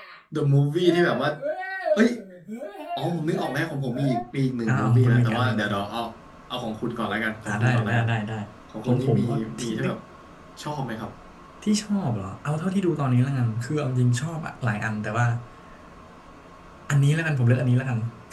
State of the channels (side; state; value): both; identical; correlation 1.00